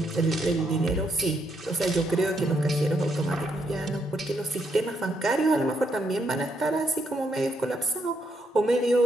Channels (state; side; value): normal; both; correlation 0.76